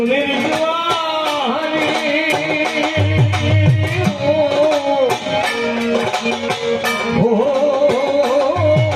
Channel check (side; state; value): both; identical; correlation 1.00